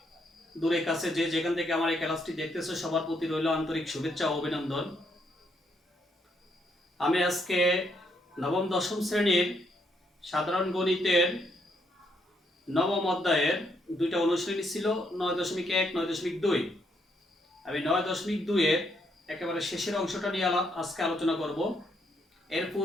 দূরে কাছে যে যেখান থেকে আমার এই ক্লাসটি দেখতেছো সবার প্রতি রইল আন্তরিক শুভেচ্ছা ও অভিনন্দন। আমি আজকে নবম দশম শ্রেণীর সাধারণ গণিতের নবম অধ্যায়ের দুইটা অনুশ্রেণী ছিল, 9.1 9.2। আমি 9.2-এর একেবারে শেষের অংশটা নিয়ে আজকে আলোচনা করব। এর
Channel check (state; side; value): normal; both; correlation 0.74